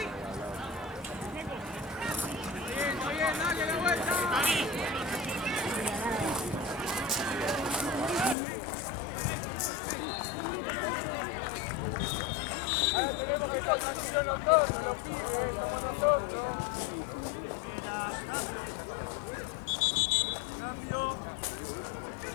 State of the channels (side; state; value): right; drops out; at 8.3 s